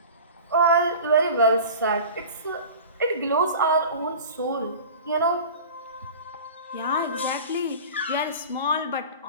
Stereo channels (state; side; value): inverted; both; correlation -0.37